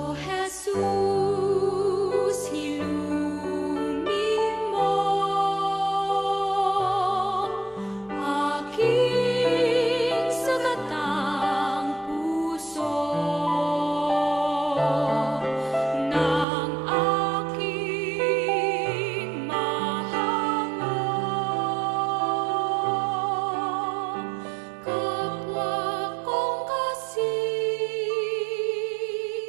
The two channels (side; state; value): left; drops out; at 16.4 s